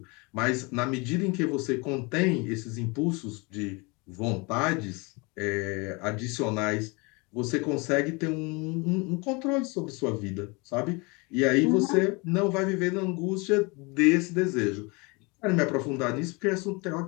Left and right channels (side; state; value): right; quieter; 28.2 dB